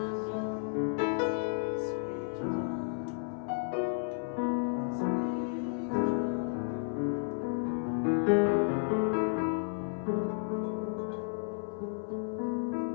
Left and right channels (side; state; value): right; silent; 56 dB below the other